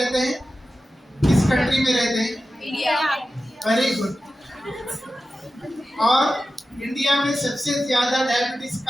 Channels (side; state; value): both; normal; correlation 0.93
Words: हैं? किस कंट्री में रहते हैं? इंडिया। Very good. और इंडिया में सबसे ज़्यादा डायबिटीज़